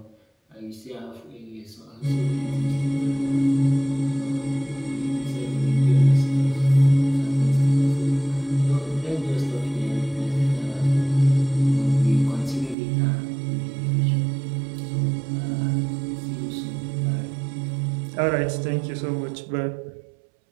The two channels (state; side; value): drops out; left; at 12.8 s